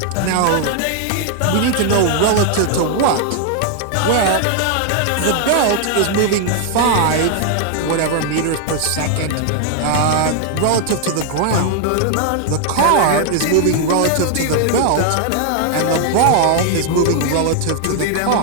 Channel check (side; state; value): both; different; correlation 0.00